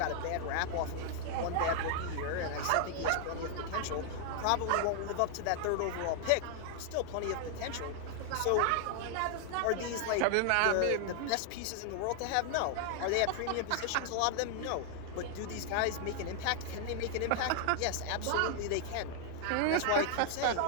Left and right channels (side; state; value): both; different; correlation 0.00